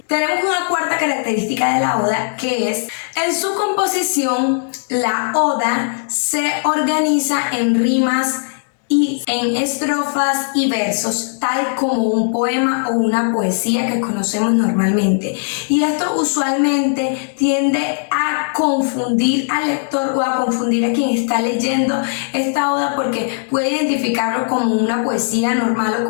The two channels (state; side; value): silent; right; 67 dB below the other